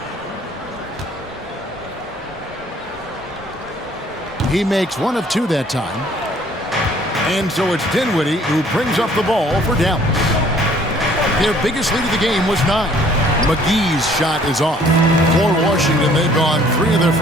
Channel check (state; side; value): normal; both; correlation 0.58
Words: He makes 1 of 2 that time. And so it's Dinwiddie who brings up the ball for Dallas. Their biggest lead of the game was 9. McGee's shot is off. For Washington, they've gone 3 of their